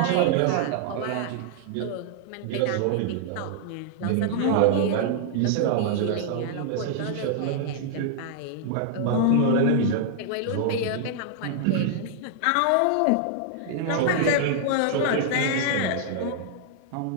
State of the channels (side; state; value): both; different; correlation -0.01